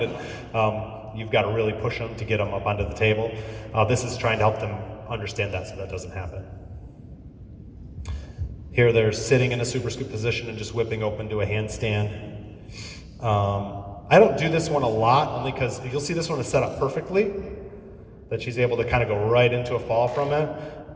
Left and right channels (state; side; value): identical; both; correlation 1.00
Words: and you've got to really push them to get them up onto the table. This is trying to help them understand that so that doesn't happen. Here they're sitting in a super scoop position and just whipping open to a handstand. I don't do this one a lot, only because you'll see this one is set up perfectly, that she's able to kind of go right into a fall from it,